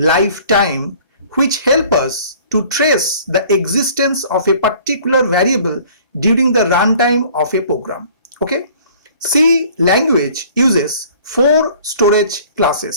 which help us to trace the existence of a particular variable during the runtime of a program. Okay, C language uses four storage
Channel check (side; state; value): both; inverted; correlation -0.52